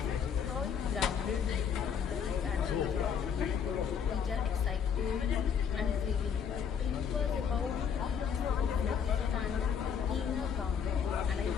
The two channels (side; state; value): right; quieter; 7.3 dB